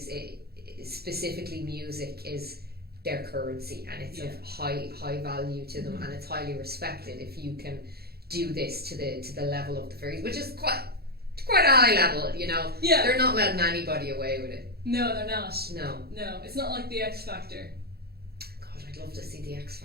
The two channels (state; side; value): late; left; 0.46 ms